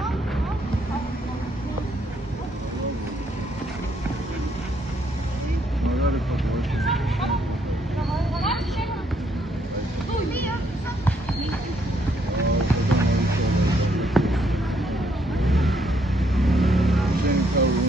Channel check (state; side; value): normal; both; correlation 0.71